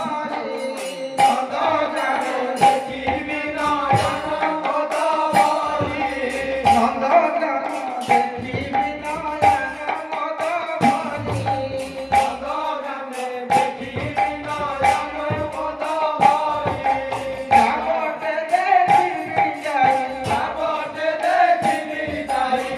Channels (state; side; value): identical; both; correlation 1.00